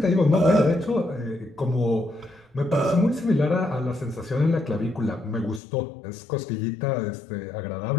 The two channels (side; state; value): right; drops out; at 5.6 s